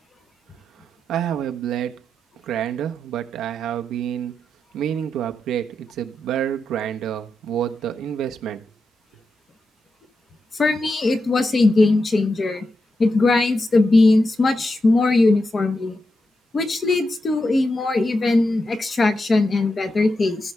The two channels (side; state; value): both; normal; correlation 0.87